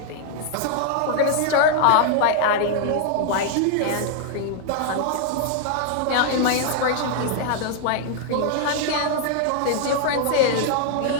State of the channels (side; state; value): both; different; correlation 0.00